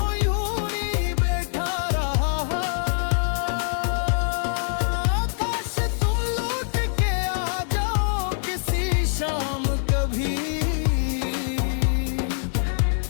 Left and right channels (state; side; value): silent; right; 62 dB below the other